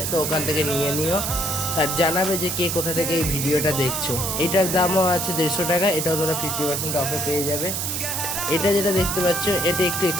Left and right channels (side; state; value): right; noise; hiss, 2 dB below the sound